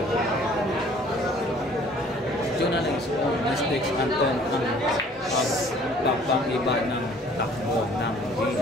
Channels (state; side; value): normal; both; correlation 0.54